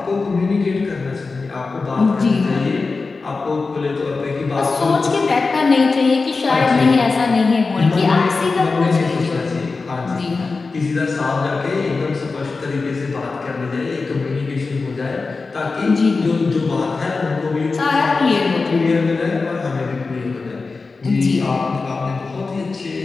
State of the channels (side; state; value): right; quieter; 4.1 dB